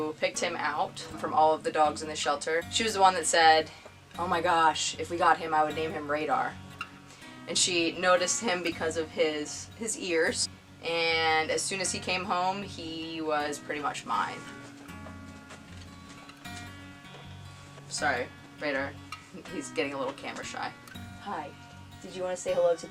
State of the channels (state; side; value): identical; both; correlation 1.00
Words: picked him out from all of the dogs in the shelter. She was the one that said, "Oh my gosh, if we got him, I would name him Radar." And she noticed him because of his ears. And as soon as he came home, he was pretty much mine. Sorry, Radar. He's getting a little camera shy. Hi. Did you want to say hello to